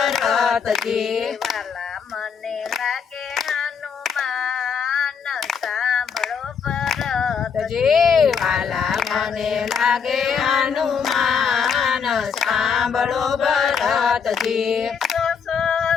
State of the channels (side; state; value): right; quieter; 6.5 dB